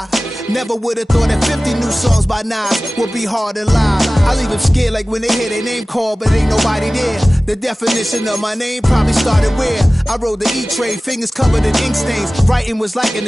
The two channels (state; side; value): normal; both; correlation 0.97